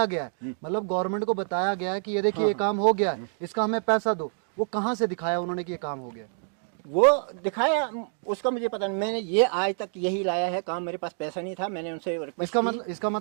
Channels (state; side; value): silent; left; 60 dB below the other